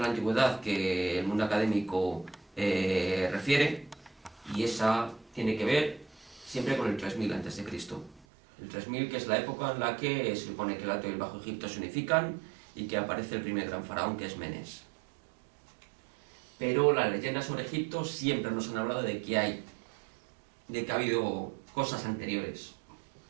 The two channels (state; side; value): drops out; left; at 8.2 s